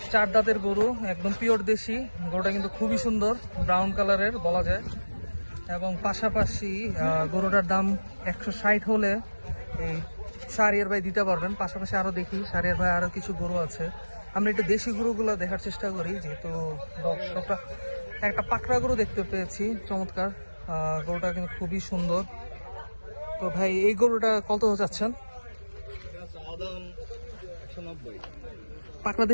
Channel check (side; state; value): both; inverted; correlation -1.00